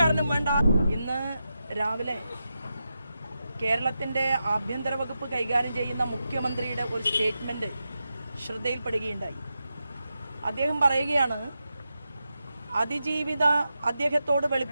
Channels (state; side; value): inverted; both; correlation -0.89